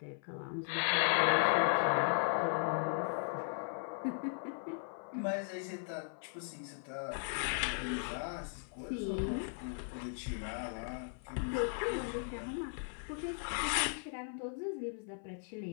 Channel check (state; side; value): silent; right; 53 dB below the other